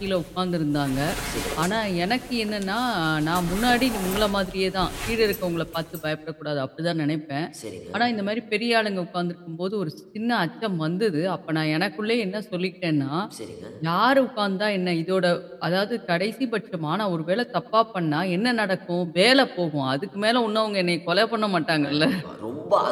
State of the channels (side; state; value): both; identical; correlation 1.00